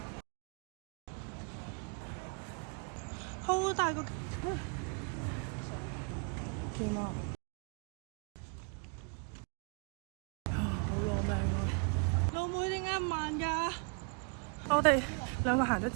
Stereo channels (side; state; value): left; quieter; 37.2 dB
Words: 好大個，見啊！好攞命啊！老妹點解咁慢㗎？我哋兩個行咗